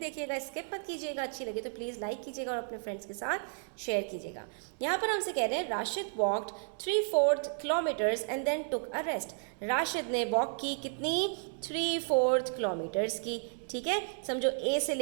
स्किप मत कीजिएगा। अच्छी लगे तो प्लीज़ लाइक कीजिएगा और अपने फ्रेंड्स के साथ शेयर कीजिएगा। यहाँ पर हमसे कह रहे हैं Rashid walked 3/4 kilometres and then took a rest. Rashid ने वॉक की कितनी? 3/4 किलोमीटर्स की। ठीक है, समझो ए से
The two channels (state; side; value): silent; left; digital silence